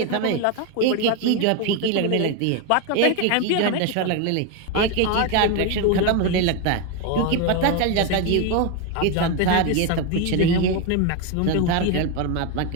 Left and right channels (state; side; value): different; both; correlation 0.02